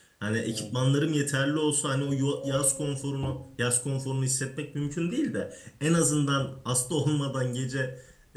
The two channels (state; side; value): identical; both; correlation 1.00